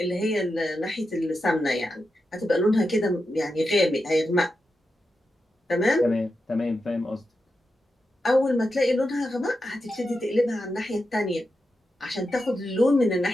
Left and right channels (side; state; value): both; normal; correlation 0.88